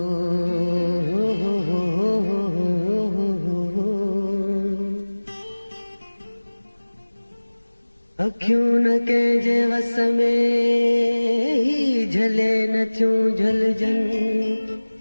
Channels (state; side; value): inverted; both; correlation -1.00